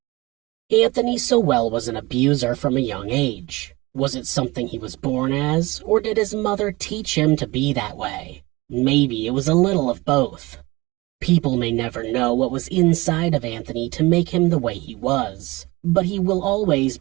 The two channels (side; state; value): left; quieter; 22.1 dB